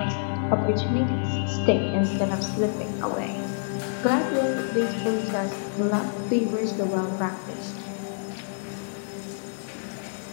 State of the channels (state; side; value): silent; right; digital silence